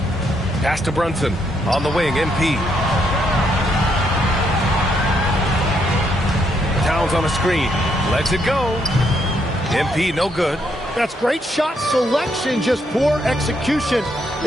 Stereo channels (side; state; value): both; normal; correlation 0.75